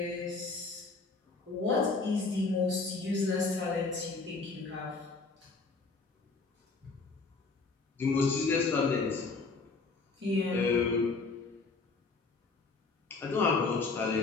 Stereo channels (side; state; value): right; quieter; 4.1 dB